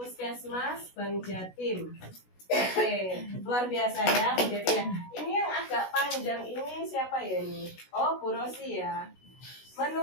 Bank Jatim. Oke, luar biasa ya Bu Devi ya. Ini yang agak panjang ini siapa ya ini? Oh, Bu Rosi ya.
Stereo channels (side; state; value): right; late; 16 ms